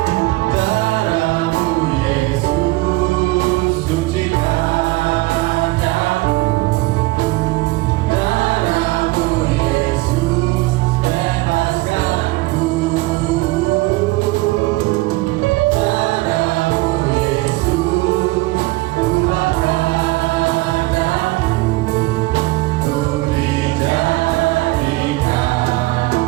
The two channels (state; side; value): quieter; left; 21.1 dB